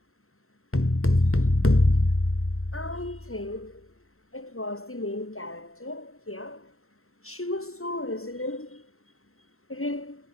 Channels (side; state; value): right; late; 0.63 ms